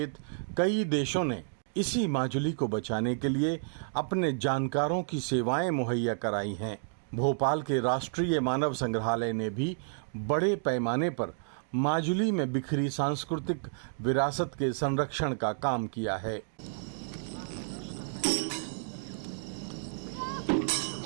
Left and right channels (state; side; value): silent; left; digital silence